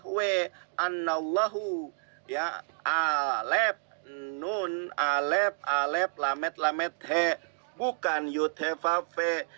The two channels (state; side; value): silent; left; digital silence